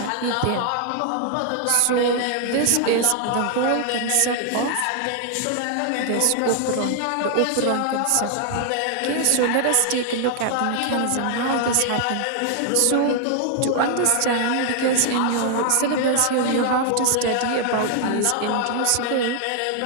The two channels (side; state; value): both; different; correlation 0.00